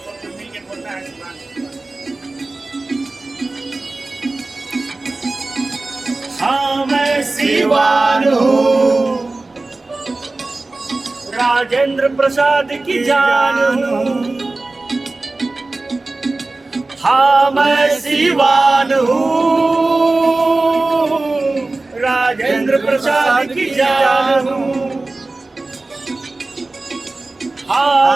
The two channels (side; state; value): left; quieter; 3.2 dB